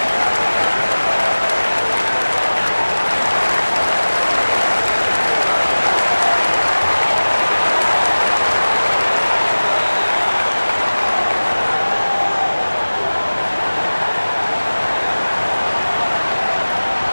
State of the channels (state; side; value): inverted; both; correlation -1.00